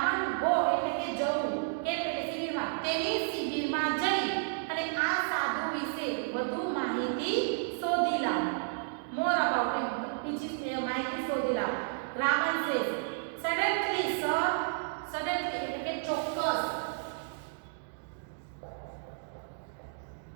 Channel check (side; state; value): left; silent; digital silence